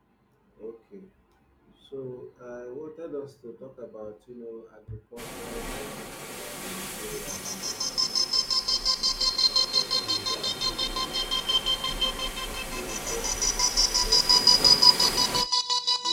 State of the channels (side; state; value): both; identical; correlation 1.00